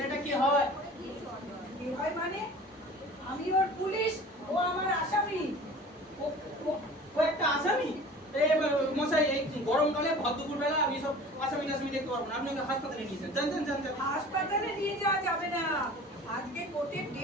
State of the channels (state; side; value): normal; both; correlation 0.42